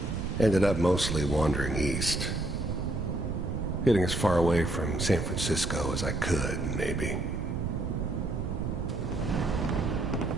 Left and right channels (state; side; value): noise; right; rumble, 2 dB below the sound